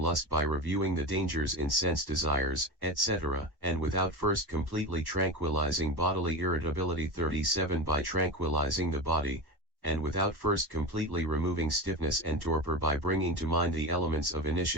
by reviewing the dangers in sense desires, etc., and without first completely tranquilizing bodily irritability 37 by tranquilizing the body, and without first completely removing stiffness and torpor by bringing to mind the elements of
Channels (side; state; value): left; late; 1.1 ms